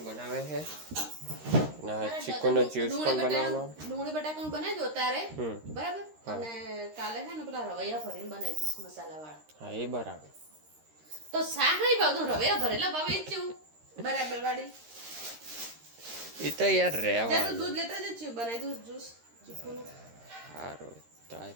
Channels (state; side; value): late; left; 13 ms